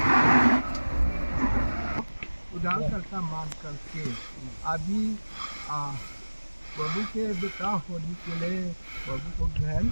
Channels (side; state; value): both; inverted; correlation -1.00